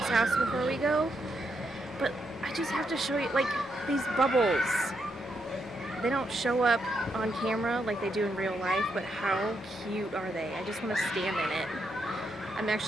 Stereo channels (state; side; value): normal; both; correlation 0.80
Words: house before we go. But I just have to show you, like, these bubbles. They don't show up on camera like they do in real life, but how cute are they? I just want to stand in it. I'm